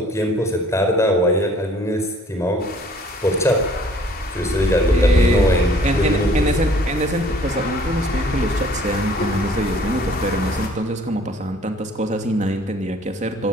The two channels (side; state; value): both; normal; correlation 0.56